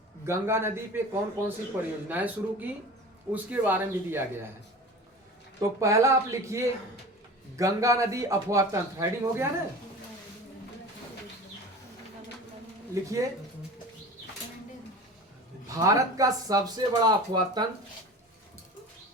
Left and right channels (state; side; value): normal; both; correlation 0.36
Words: गंगा नदी पे कौन कौन सी परियोजनाएं शुरू की उसके बारे में भी दिया गया है। तो पहला आप लिखिए गंगा नदी अफवाह तंत्र, हेडिंग हो गया ना? लिखिए भारत का सबसे बड़ा अफवाह तंत्र,